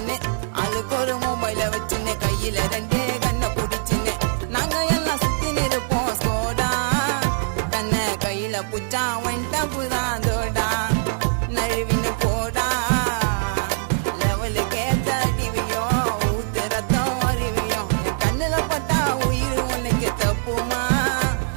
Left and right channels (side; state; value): left; silent; digital silence